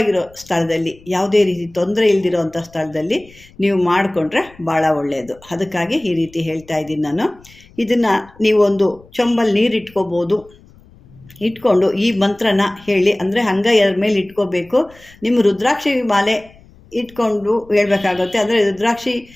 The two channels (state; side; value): noise; left; rumble, 26 dB below the sound